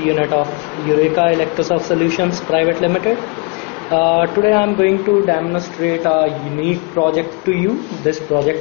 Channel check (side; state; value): right; quieter; 31.4 dB